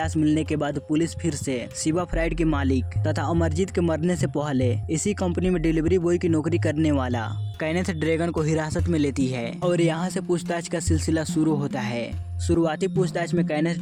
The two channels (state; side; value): identical; both; correlation 1.00